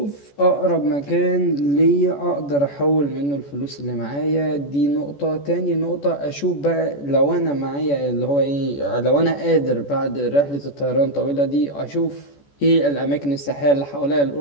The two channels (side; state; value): right; late; 14 ms